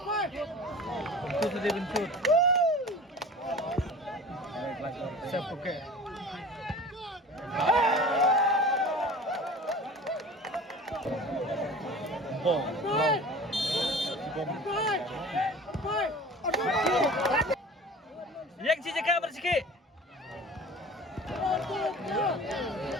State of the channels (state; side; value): normal; both; correlation 0.40